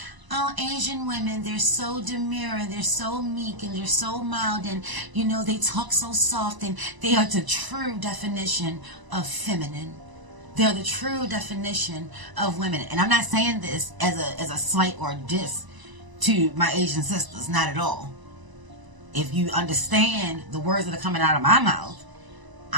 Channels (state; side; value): late; left; 1.0 ms